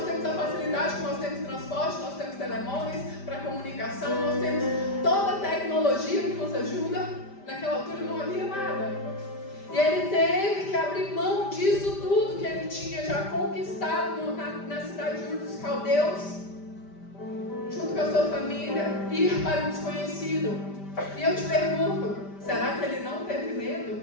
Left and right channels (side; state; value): right; late; 5.1 ms